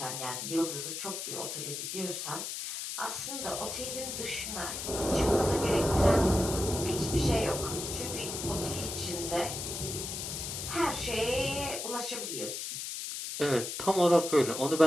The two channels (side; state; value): left; noise; hiss, 5 dB below the sound